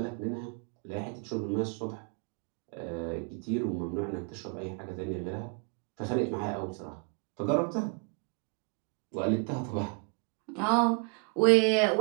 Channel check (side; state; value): left; quieter; 36.9 dB